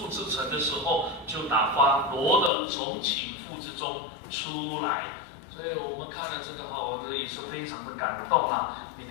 之城的时候，就打发罗得从倾覆之中出来。所以我们看了这个我觉得也是非常的感动啦。你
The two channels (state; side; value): drops out; right; at 2.5 s